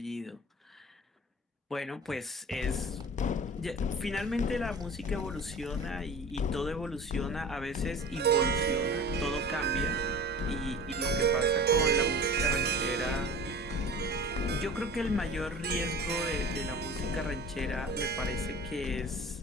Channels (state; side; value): normal; both; correlation 0.39